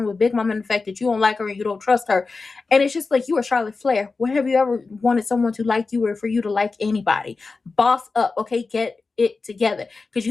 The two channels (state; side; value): quieter; right; 4.1 dB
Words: with Big Mama and the fact that you don't like her and you don't trust her. And it's just like, you are Charlotte Flair. When have you ever wanted someone to like you or for you to like anybody? Boss up, okay? Get it together. Because